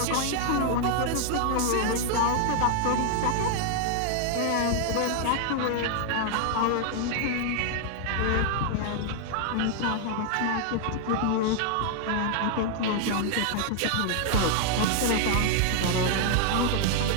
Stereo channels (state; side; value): different; both; correlation 0.00